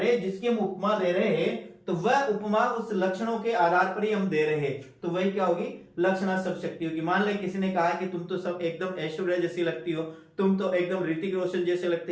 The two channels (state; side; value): identical; both; correlation 1.00